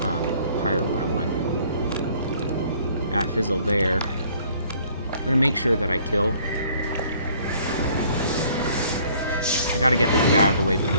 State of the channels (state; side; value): inverted; both; correlation -0.58